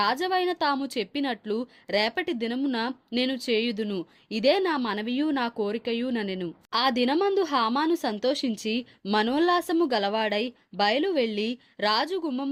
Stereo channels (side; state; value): both; identical; correlation 1.00